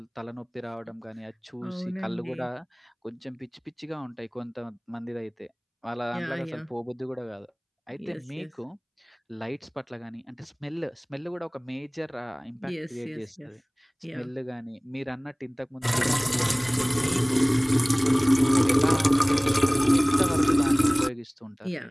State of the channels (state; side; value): identical; both; correlation 1.00